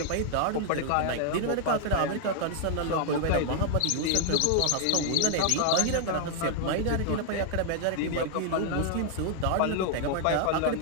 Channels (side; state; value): both; different; correlation 0.00